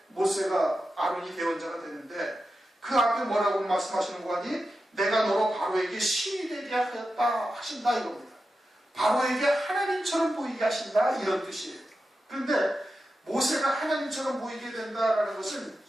모세가 아론이 대언자가 되는데 그 앞에 뭐라고 말씀하시는 거 아니? 내가 너로 바로에게 신이 되게 하였다 하신다 이겁니다. 바로에게 하나님처럼 보이게 하신다 이런 뜻이에요. 그런데 모세가 하나님처럼 보이게 된다라는 것은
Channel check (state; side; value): normal; both; correlation 0.91